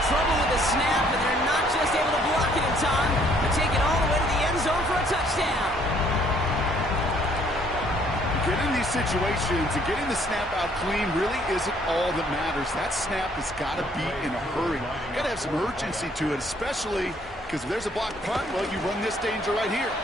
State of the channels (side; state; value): both; normal; correlation 0.63